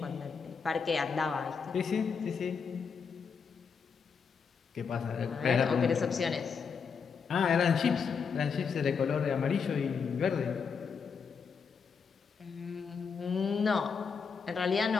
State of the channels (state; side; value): quieter; right; 5.9 dB